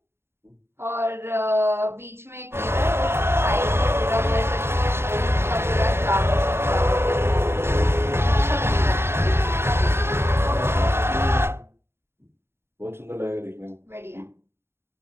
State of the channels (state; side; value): late; left; 0.12 ms